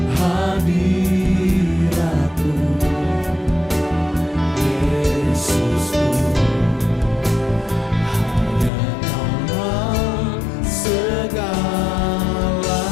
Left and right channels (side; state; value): right; drops out; at 8.7 s